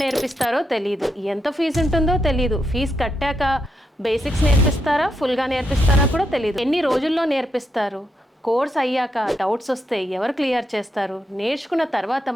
తెలియదు, ఎంత ఫీజు ఉంటుందో తెలియదు, ఫీజు కట్టాక బేసిక్స్ నేర్పిస్తారా, ఫుల్గా నేర్పిస్తారా కూడా తెలియదు, ఎన్ని రోజుల్లో నేర్పిస్తారు, కోర్స్ అయ్యాక డౌట్స్ వస్తే ఎవరు క్లియర్ చేస్తారు, నేర్చుకున్న తర్వాత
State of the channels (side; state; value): both; normal; correlation 0.82